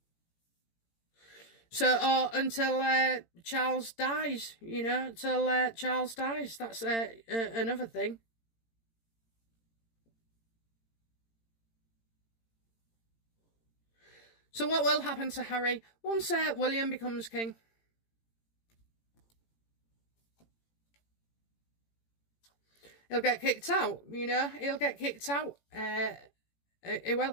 So, or until Charles dies, you know, till Charles dies. That's another thing. So what will happen to Harry once William becomes king? He'll get kicked out, you know. He'll get kicked out. He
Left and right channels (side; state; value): right; late; 18 ms